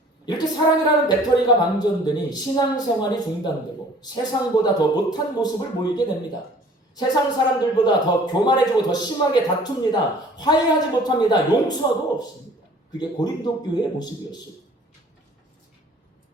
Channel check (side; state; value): both; normal; correlation 0.51